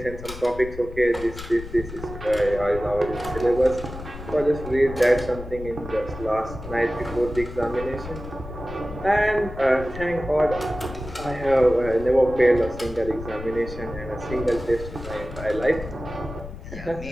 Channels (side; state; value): left; noise; rumble, 12 dB below the sound